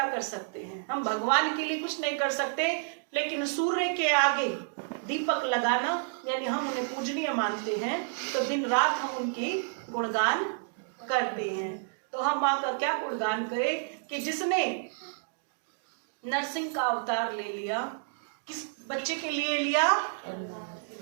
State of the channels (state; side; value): silent; left; digital silence